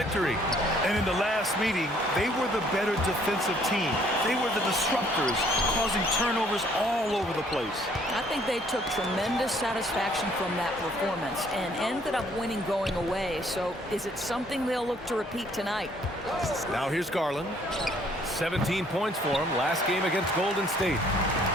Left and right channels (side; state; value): both; normal; correlation 0.62